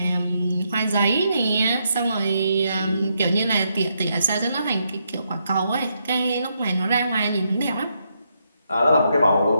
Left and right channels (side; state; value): both; inverted; correlation -0.79